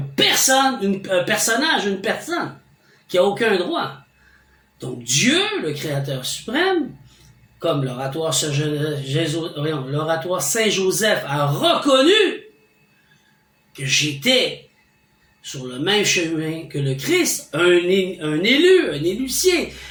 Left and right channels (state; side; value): identical; both; correlation 1.00